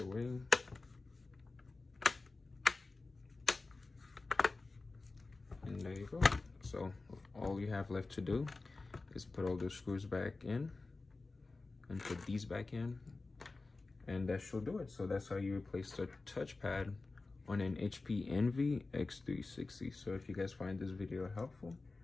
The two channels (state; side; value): quieter; right; 3.6 dB